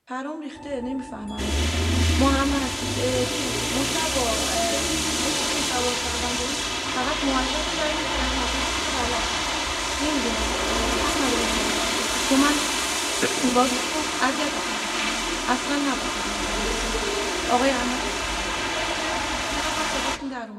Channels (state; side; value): identical; both; correlation 1.00